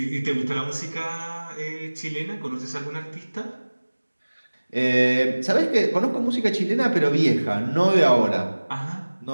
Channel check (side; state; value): both; inverted; correlation -1.00